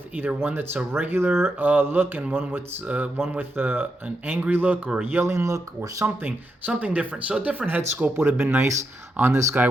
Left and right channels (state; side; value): normal; both; correlation 0.84